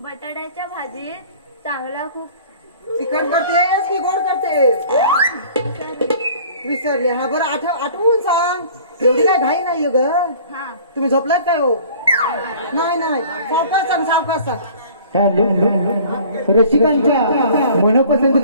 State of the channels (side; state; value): both; inverted; correlation -0.49